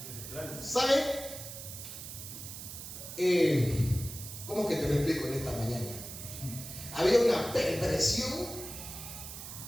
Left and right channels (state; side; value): noise; right; hiss, 10 dB below the sound